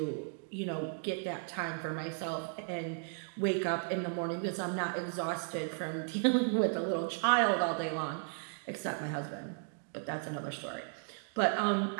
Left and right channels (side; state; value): left; silent; 54 dB below the other